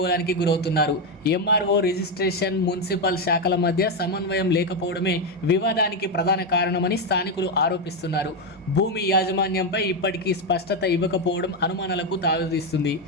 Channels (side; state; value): both; normal; correlation 0.07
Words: గురవుతున్నారు. ఎంఆర్ఓ, రిజిస్ట్రేషన్, మున్సిపల్ శాఖల మధ్య సమన్వయం లేకపోవడమే వివాదానికి ప్రధాన కారణమని స్థానికులు ఆరోపిస్తున్నారు. భూమి యాజమాన్యంపై ఇప్పటికీ స్పష్టత ఇవ్వకపోవడం అనుమానాలకు తావిస్తుంది.